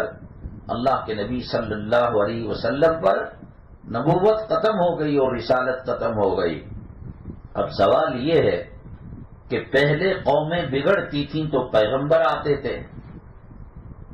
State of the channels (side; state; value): both; identical; correlation 1.00